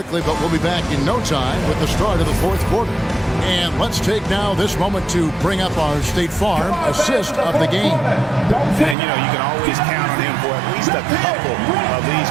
but we'll be back in no time with the start of the fourth quarter. And let's take now this moment to bring up our State Farm assist of the game. And, you know, you can always count on him for at least a couple of these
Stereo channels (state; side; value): drops out; left; at 9.0 s